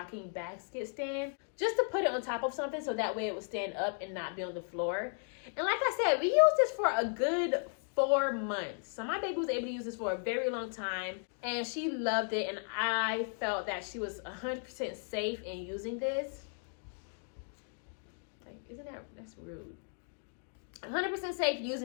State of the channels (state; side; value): silent; right; 54 dB below the other